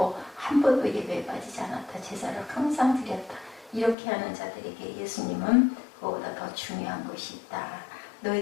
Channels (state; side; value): drops out; right; at 4.0 s